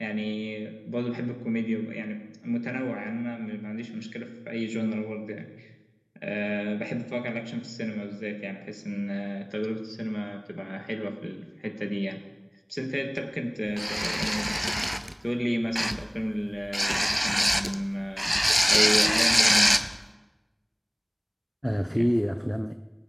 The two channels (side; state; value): both; identical; correlation 1.00